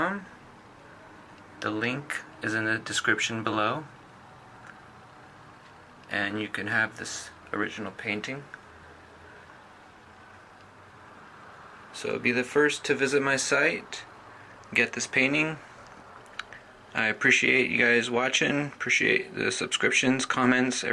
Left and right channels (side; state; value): both; identical; correlation 1.00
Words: The link is in the description below, and you can have this original painting. So be the first to visit my site, get this painting. I appreciate you guys watching, appreciate the subscriptions, comments,